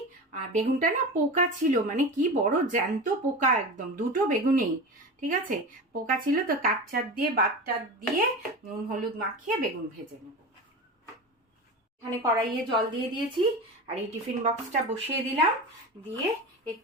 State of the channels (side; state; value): both; normal; correlation 0.27